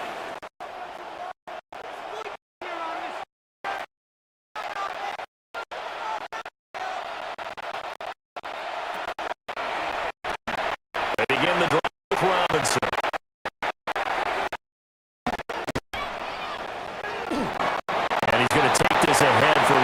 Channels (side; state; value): both; identical; correlation 1.00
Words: They begin the drive with Robinson. And he's going to take this ahead for